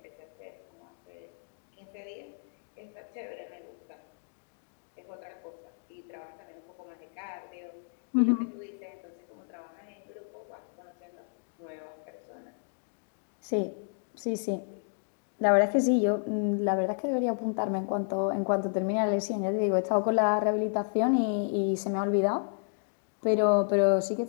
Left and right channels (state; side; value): silent; right; digital silence